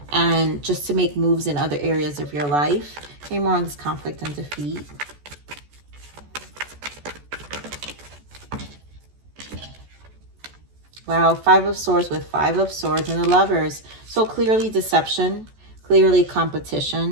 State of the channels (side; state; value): left; late; 14 ms